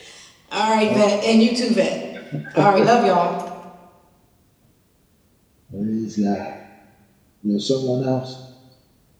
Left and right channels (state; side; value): identical; both; correlation 1.00